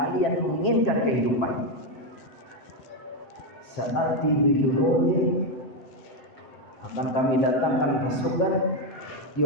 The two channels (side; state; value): right; late; 7.5 ms